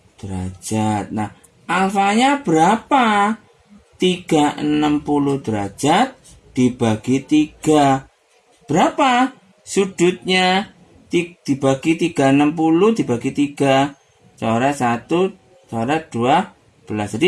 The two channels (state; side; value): identical; both; correlation 1.00